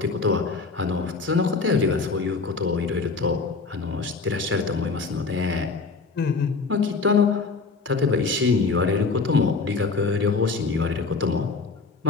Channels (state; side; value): quieter; right; 4.3 dB